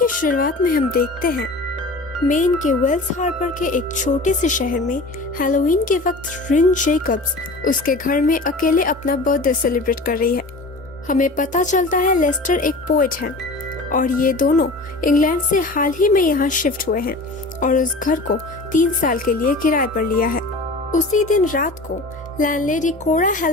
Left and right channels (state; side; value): quieter; right; 3.0 dB